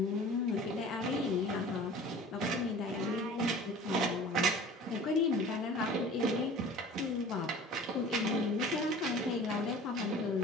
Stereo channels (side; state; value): both; normal; correlation 0.43